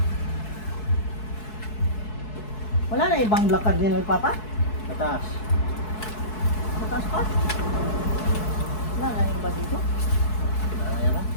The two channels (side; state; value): right; late; 4.7 ms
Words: Wala na ibang black cardinal, Papa? Tatas. Mataas pa? Wala na yung iba dito? Ayan na.